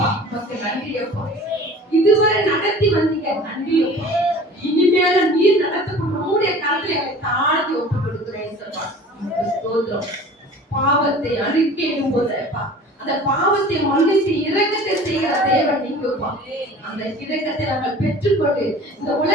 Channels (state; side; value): normal; both; correlation 0.43